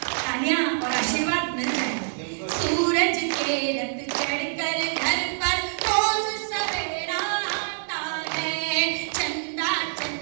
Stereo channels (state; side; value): silent; left; digital silence